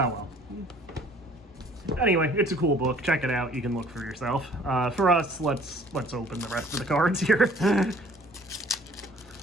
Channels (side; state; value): both; normal; correlation 0.54